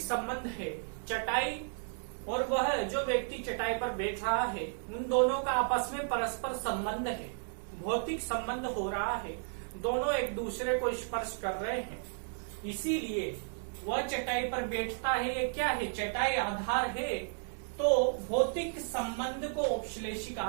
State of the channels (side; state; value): left; silent; digital silence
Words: संबंध है। चटाई और वह जो व्यक्ति चटाई पर बैठ रहा है, उन दोनों का आपस में परस्पर संबंध है, भौतिक संबंध हो रहा है। दोनों एक दूसरे को स्पर्श कर रहे हैं। इसीलिए वह चटाई पर बैठता है। ये क्या है? चटाई आधार है। तो भौतिक संबंध को औपश्लेषिक